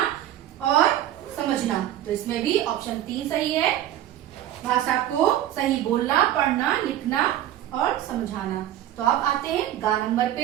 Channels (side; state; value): left; quieter; 12.5 dB